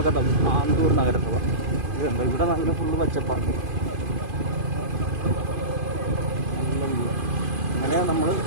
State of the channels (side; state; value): left; late; 2.5 ms